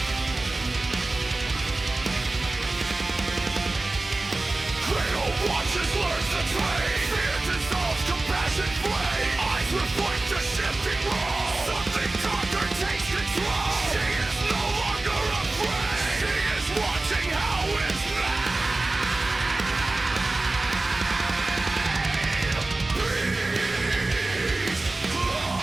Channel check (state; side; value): quieter; left; 3.1 dB